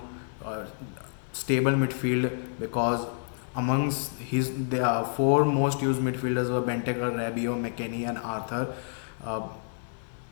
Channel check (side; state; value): right; silent; digital silence